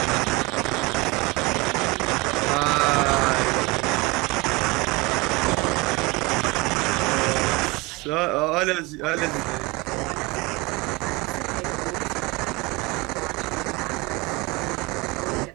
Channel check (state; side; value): quieter; left; 24.0 dB